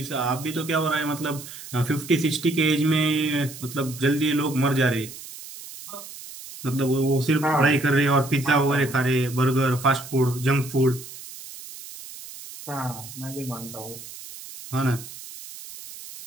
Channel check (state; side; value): noise; right; hiss, 14 dB below the sound